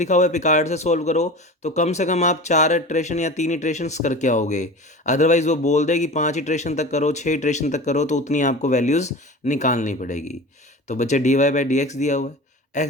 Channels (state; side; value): normal; both; correlation 0.34